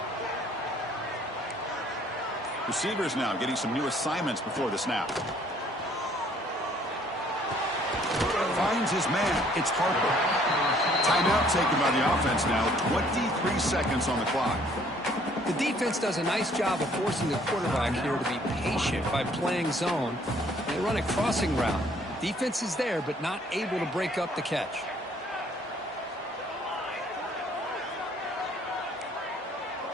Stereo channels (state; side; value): normal; both; correlation 0.61